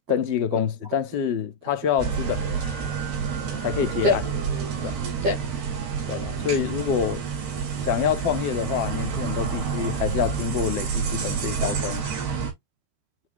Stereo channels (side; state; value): left; late; 13 ms